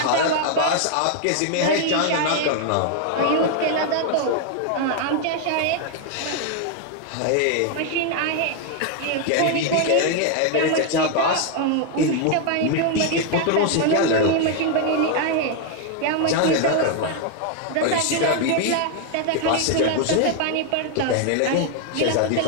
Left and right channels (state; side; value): different; both; correlation 0.01